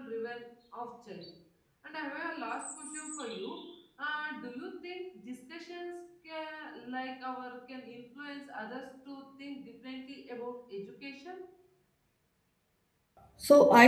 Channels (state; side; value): identical; both; correlation 1.00